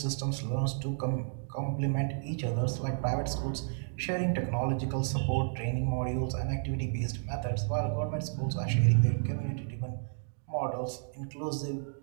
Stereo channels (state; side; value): silent; left; digital silence